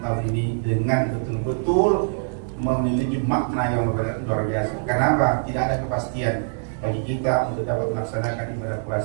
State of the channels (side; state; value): left; silent; digital silence